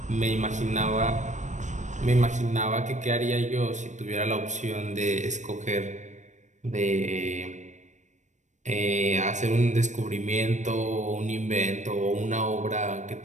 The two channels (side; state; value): left; late; 0.35 ms